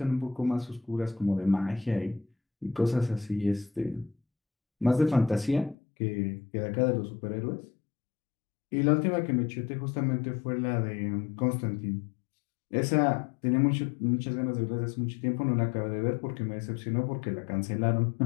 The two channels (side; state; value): right; drops out; at 5.8 s